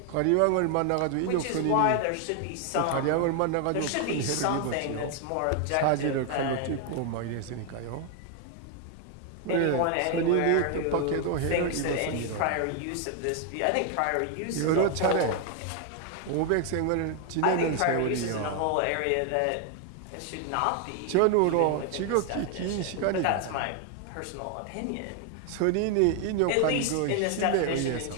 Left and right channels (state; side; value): different; both; correlation 0.00